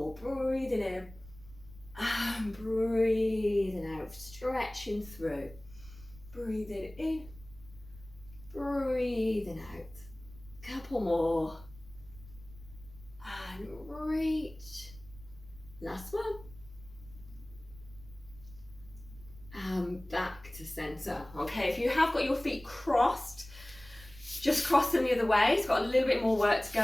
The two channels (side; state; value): right; noise; rumble, 19 dB below the sound